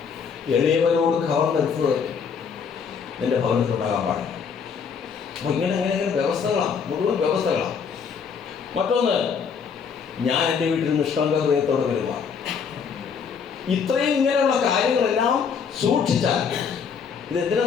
എളിയവരോട് കവർന്നെടുത്തത് നിന്റെ ഭവനത്തിലുണ്ടാകാൻ പാടില്ല. അപ്പോൾ ഇങ്ങനെ വ്യവസ്ഥകളാണ്, മുഴുവൻ വ്യവസ്ഥകളാണ്. മറ്റൊന്ന്, ഞാൻ എൻ്റെ വീട്ടിൽ നിഷ്കളങ്ക ഹൃദയത്തോടെ പെരുമാറും. ഇത്രയും ഇങ്ങനെയുള്ള കാര്യങ്ങളെല്ലാം സൂക്ഷിച്ചാൽ, ഇത്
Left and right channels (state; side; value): quieter; right; 6.4 dB